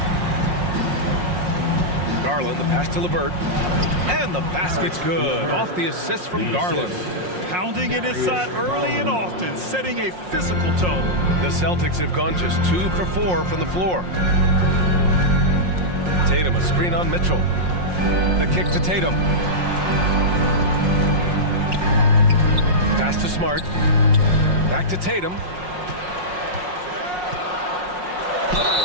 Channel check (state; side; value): late; left; 5.6 ms